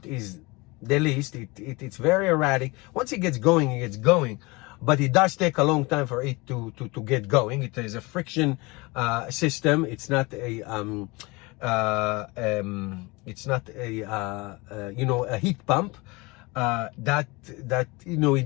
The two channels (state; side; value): quieter; right; 25.0 dB